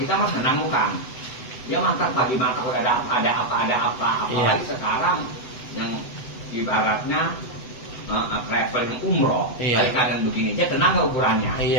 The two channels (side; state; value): right; late; 7.9 ms